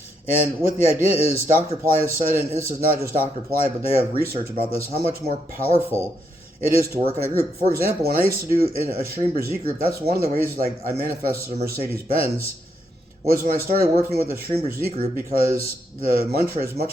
And what the idea is, Dr. Pillai has said, and this is not just Dr. Pillai, but they have research about this, how much more powerful it is to work in a group. For example, when I used to do in a Stream Brzee group, that's one of the ways like I manifested a Mercedes-Benz, was when I started working with the Stream Brzee group, because the mantra is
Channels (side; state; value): both; normal; correlation 0.78